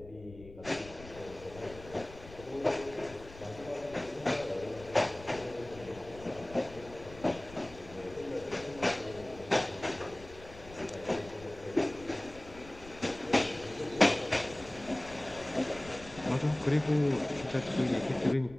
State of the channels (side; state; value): left; noise; rumble, 17 dB below the sound